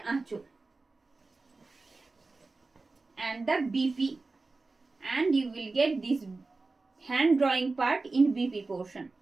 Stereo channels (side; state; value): left; quieter; 3.6 dB